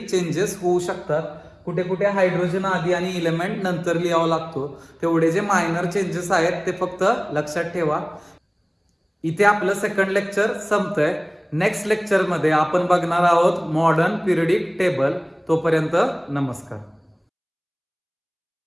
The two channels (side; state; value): both; identical; correlation 1.00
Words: चेंजेस होऊ शकतात, कुठे कुठे हायड्रोजन आधी आणि इलेमेंट नंतर लिहावा लागतो, तेवढे जे मायनर चेंजेस आहेत ते फक्त लक्षात ठेवा. इथे आपलं सेकंड लेक्चर संपतंय. नेक्स्ट लेक्चर मध्ये आपण बघणार आहोत मॉडर्न पिरियडिक टेबल. तोपर्यंत नमस्कार.